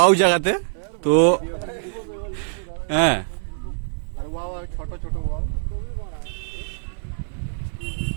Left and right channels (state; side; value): silent; left; 63 dB below the other